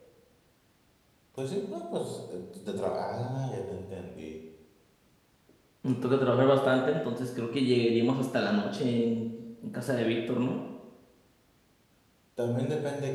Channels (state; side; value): identical; both; correlation 1.00